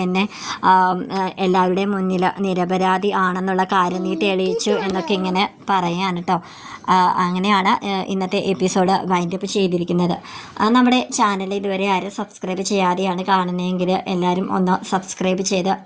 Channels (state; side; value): identical; both; correlation 1.00